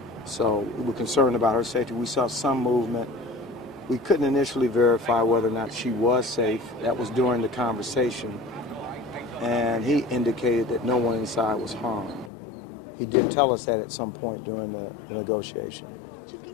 So we were concerned about her safety. We saw some movement. We couldn't initially verify whether or not she was safe. That was during the conversation. And he indicated that no one inside was harmed. He did tell us that at some point during the negotiation. Chief,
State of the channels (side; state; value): right; drops out; at 12.3 s